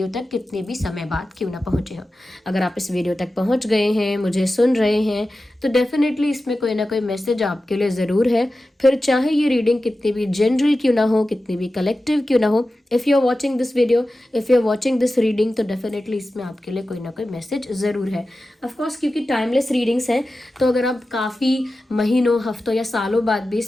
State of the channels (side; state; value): both; normal; correlation 0.94